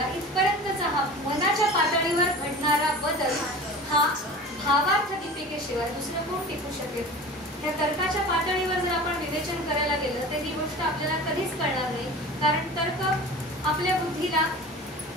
इथपर्यंतचा हा मनाच्या पातळीवर घडणारा बदल हा भावार्थ दीपिकेशिवाय दुसरं कोण टिकू शकेल. या तर्काच्या पातळीवर जर आपण विवेचन करायला गेलं तर ही गोष्ट आपल्याला कधीच कळणार नाही, कारण तर्क आपल्या बुद्धीला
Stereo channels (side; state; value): both; normal; correlation 0.37